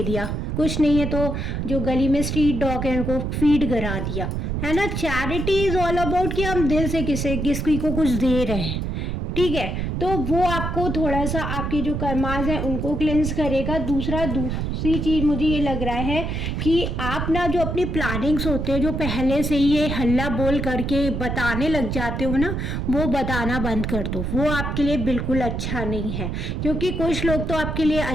दिया, कुछ नहीं है तो जो गली में स्ट्रीट डॉग है उनको फीड करा दिया, है ना। चैरिटी इज़ ऑल अबाउट कि हम दिल से किसी को कुछ दे रहे हैं, ठीक है। तो वो आपको थोड़ा सा आपके जो कर्माज हैं उनको क्लेंस करेगा। दूसरी चीज़ मुझे ये लग रहा है कि आप ना जो अपनी प्लानिंग्स होते हैं, जो पहले से ही ये हल्ला बोल करके बताने लग जाते हो ना, वो बताना बंद कर दो। वो आपके लिए बिल्कुल अच्छा नहीं है, क्योंकि कुछ लोग तो आपके लिए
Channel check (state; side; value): noise; right; rumble, 2 dB below the sound